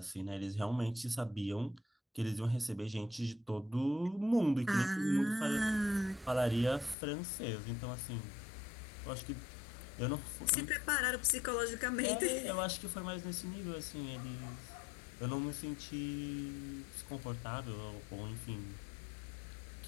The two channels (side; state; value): right; drops out; at 7.0 s